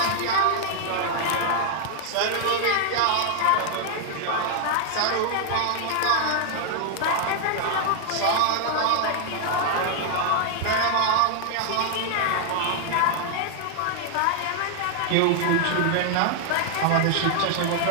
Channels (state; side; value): different; both; correlation 0.00